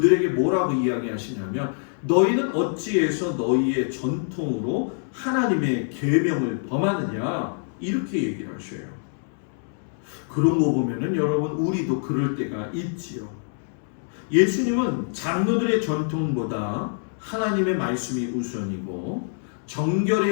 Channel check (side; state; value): right; silent; digital silence